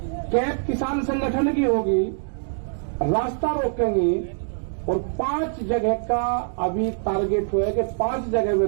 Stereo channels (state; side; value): silent; left; digital silence